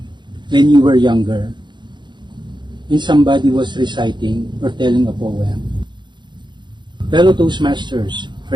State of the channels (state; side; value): late; left; 0.22 ms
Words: when you were younger and somebody was reciting or telling a poem? Fellow Toastmasters,